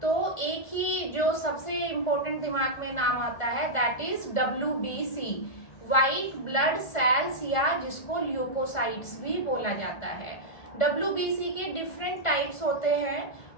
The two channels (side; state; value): right; late; 1.4 ms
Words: तो एक ही जो सबसे इम्पोर्टेंट दिमाग में नाम आता है that is WBC, white blood cells, या जिसको ल्यूकोसाइट्स भी बोला जाता है। WBC के डिफरेंट टाइप्स होते हैं।